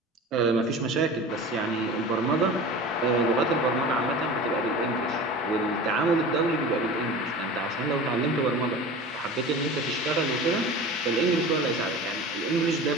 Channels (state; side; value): normal; both; correlation 0.35